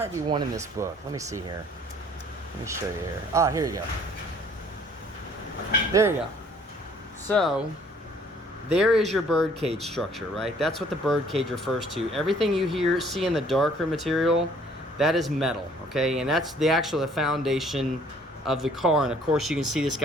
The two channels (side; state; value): both; normal; correlation 0.58